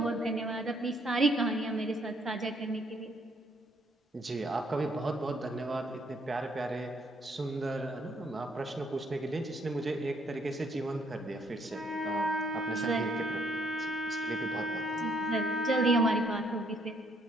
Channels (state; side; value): normal; both; correlation 0.68